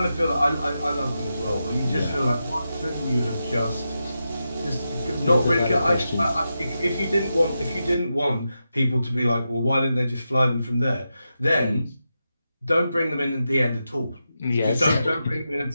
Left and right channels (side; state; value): both; inverted; correlation -0.88